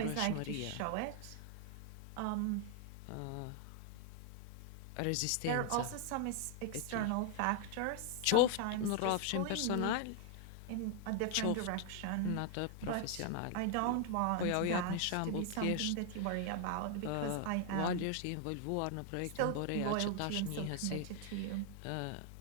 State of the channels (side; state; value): both; different; correlation 0.00